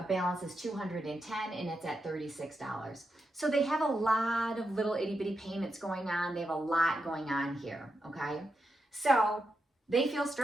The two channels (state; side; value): normal; both; correlation 0.86